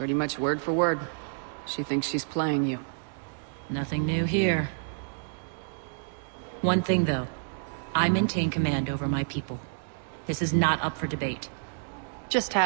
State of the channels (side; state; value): left; silent; digital silence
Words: much word for word. She thinks she's playing you. Nothing new here. One thing, though. I maintain command over my people. This is not up for debate. Just